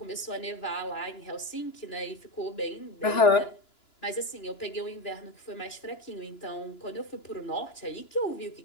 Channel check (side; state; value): right; late; 2.9 ms